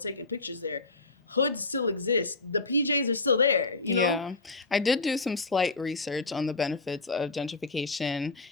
pictures there. Hoods still exist. The PJs are still there. You know? Yeah. I did do some slight research on the benefits of gentrification,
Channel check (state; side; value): quieter; right; 3.5 dB